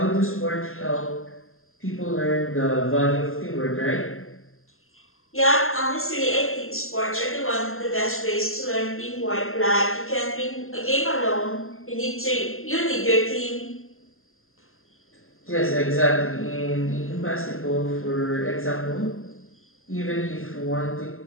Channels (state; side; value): late; right; 0.61 ms